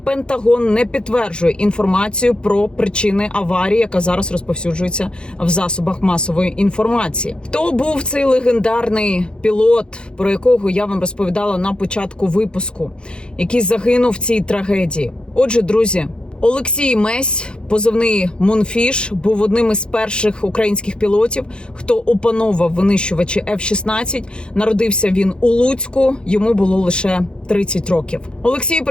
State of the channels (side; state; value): right; late; 0.051 ms